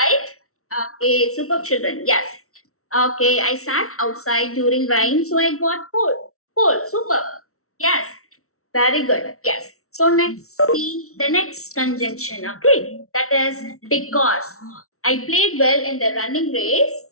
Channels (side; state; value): right; late; 0.63 ms